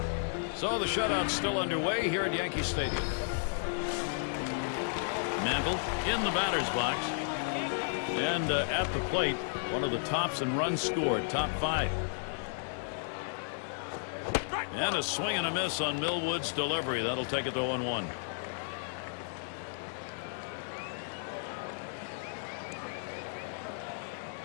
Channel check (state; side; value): silent; right; digital silence